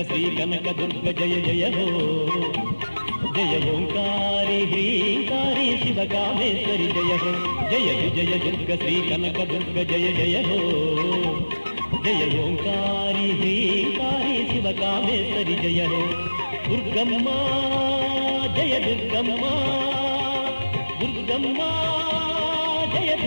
శ్రీ కనక దుర్గ జయ జయ హో జయ ఓంకారి హ్రీంకారి శివకామేశ్వరి జయ హో జయ విజయ దుర్గ శ్రీ కనక దుర్గ జయ జయ హో జయ ఓంకారి హ్రీంకారి శివకామేశ్వరి జయ హో దుర్గమ్మ జయ దుర్గమ్మ దుర్గమ్మ జయ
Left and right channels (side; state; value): both; inverted; correlation -1.00